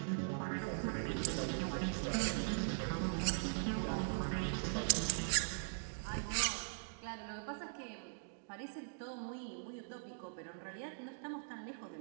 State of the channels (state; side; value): silent; left; digital silence